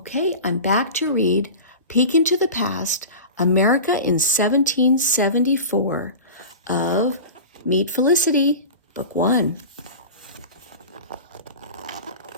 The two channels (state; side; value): inverted; both; correlation -0.32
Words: I'm back to read Peek into the Past, America in 1774 of Meet Felicity, Book 1.